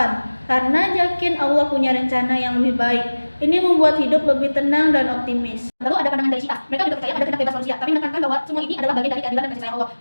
karena yakin Allah punya rencana yang lebih baik. Ini membuat hidup lebih tenang dan optimis. Lalu ada pandangan dari Syiah. Mereka juga percaya ada kehendak bebas manusia, tapi menekankan bahwa semua ini adalah bagian dari keadilan dan kasih sayang Allah.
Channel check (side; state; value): both; inverted; correlation -1.00